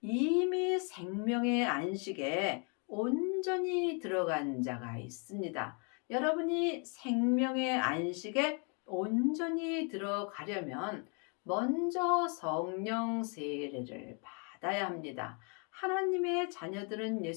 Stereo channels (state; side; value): quieter; right; 37.1 dB